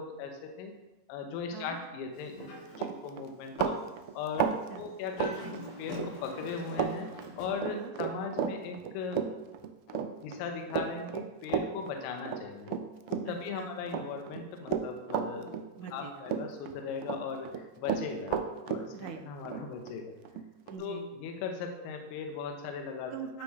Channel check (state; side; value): late; right; 22 ms